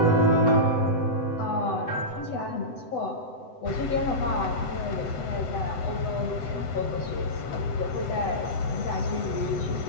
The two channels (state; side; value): late; right; 7.9 ms